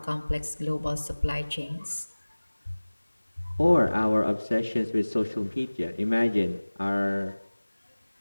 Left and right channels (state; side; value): inverted; both; correlation -1.00